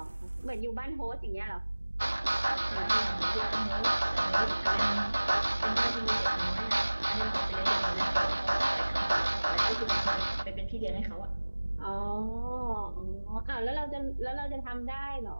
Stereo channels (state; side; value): inverted; both; correlation -1.00